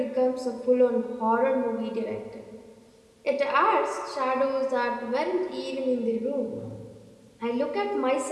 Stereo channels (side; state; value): both; identical; correlation 1.00